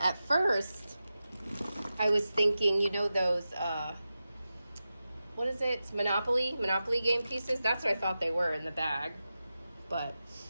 At first, I was thinking, you know, those, what is it? Monopoly game pieces? That's what I thought they were in the bag. But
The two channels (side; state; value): both; inverted; correlation -0.93